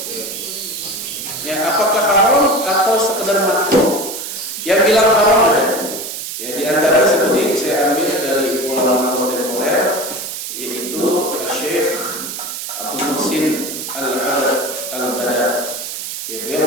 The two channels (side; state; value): right; noise; hiss, 7 dB below the sound